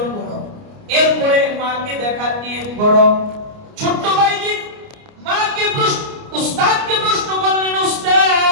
করো, এরপরে মাকে দেখার নিয়ত করো। ছোট্ট বাইজিদ মাকে উস্তাদকে প্রশ্ন করলেন,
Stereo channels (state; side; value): late; left; 29 ms